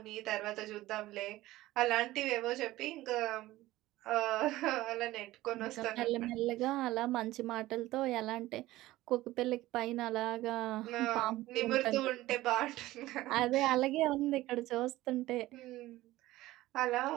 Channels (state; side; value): quieter; left; 16.9 dB